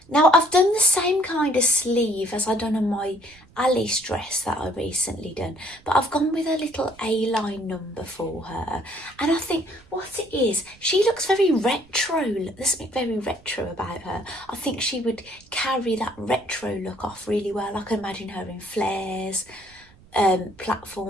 Now, I've done the same kind of sleeve as I've done on my Alice dress that I recently done, but I've gone with a little A-line number for her. And I think what it is, she looks very retro. There's something very retro about her. I think she would carry that retro look off really well. I can imagine her in flares,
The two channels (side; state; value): right; noise; rumble, 27 dB below the sound